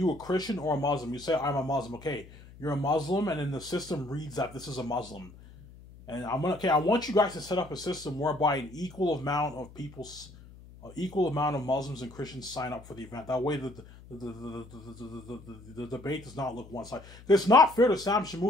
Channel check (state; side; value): noise; left; hum, 20 dB below the sound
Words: a Christian or a Muslim? You say, I'm a Muslim. Okay, you're a Muslim, and then the system reads that this is a Muslim. And I want you guys to set up a system whereby an equal amount of Muslims and Christians sign up for the event. That way the debate does not look one-sided. It's not fair to Sam